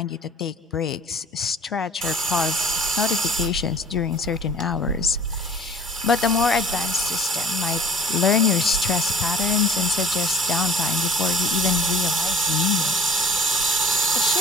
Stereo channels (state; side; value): normal; both; correlation 0.47